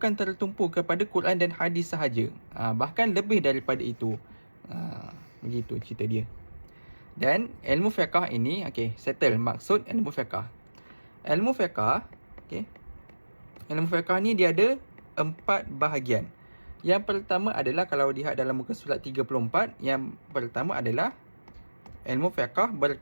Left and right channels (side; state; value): both; inverted; correlation -1.00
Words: tertumpu kepada Quran dan hadis sahaja, bahkan lebih daripada itu. Begitu cerita dia. Dan ilmu fiqh ini, settle maksud ilmu fiqh. Ilmu fiqh, ilmu fiqh ni dia ada 4 bahagian. Yang pertama adalah, kalau lihat dalam muka surat 34, yang pertama adalah ilmu fiqh